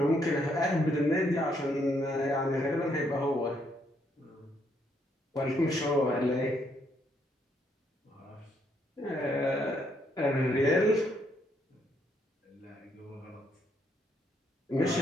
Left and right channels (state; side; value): normal; both; correlation 0.73